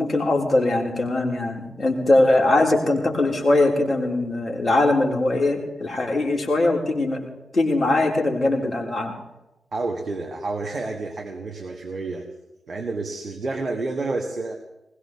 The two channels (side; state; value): both; normal; correlation 0.90